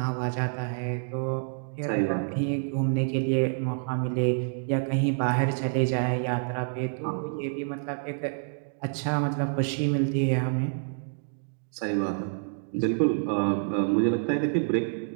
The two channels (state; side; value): silent; left; digital silence